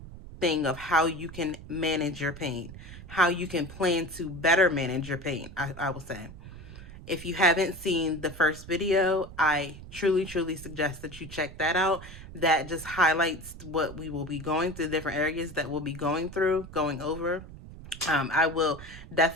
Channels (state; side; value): noise; right; rumble, 15 dB below the sound